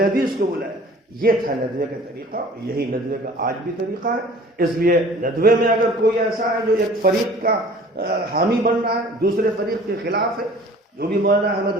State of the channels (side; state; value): both; normal; correlation 0.48